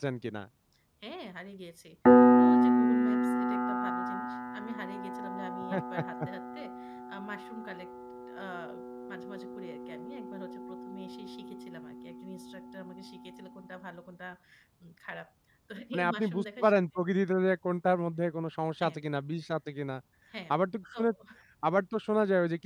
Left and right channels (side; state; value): both; identical; correlation 1.00